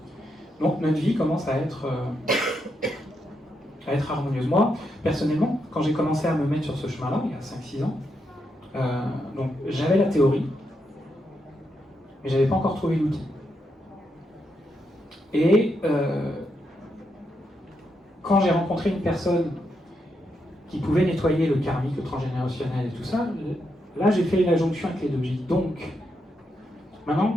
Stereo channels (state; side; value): normal; both; correlation 0.82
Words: Donc notre vie commence à être harmonieuse. Moi, personnellement, quand j'ai commencé à me mettre sur ce chemin-là, il y a 5-6 ans, donc j'avais la théorie, mais j'avais pas encore trouvé l'outil. Et quand j'ai rencontré une personne qui pouvait nettoyer le karmique, le transgénérationnel et tout ça, là j'ai fait la jonction avec les deux. J'ai dit donc,